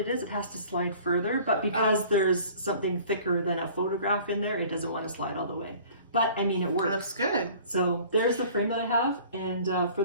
is? It has to slide further, but because there's something thicker than a photograph in there, it doesn't want to slide all the way. But I mean, it works. It looks good. So there's the frame that I have, and for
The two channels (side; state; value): both; inverted; correlation -0.49